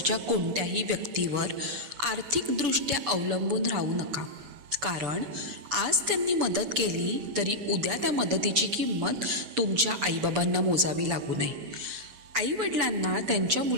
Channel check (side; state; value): left; late; 6.9 ms